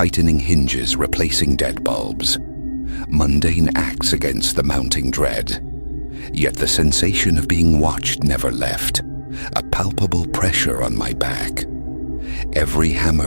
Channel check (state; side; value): inverted; both; correlation -1.00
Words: hinges, replacing dead bulbs. Mundane acts against the mounting dread. Yet the sensation of being watched never left. a palpable pressure on my back. Every